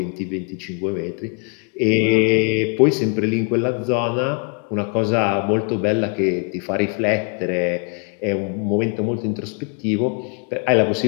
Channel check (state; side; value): quieter; right; 37.3 dB